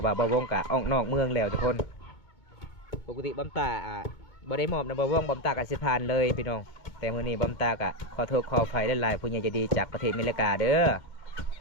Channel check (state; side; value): late; right; 2.4 ms